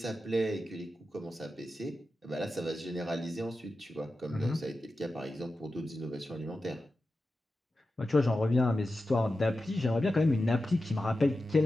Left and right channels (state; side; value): normal; both; correlation 0.92